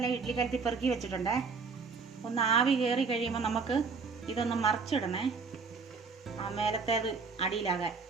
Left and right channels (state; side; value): quieter; left; 4.9 dB